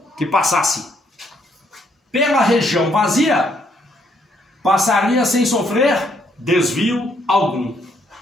que passasse pela região vazia passaria sem sofrer desvio algum.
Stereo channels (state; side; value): normal; both; correlation 0.71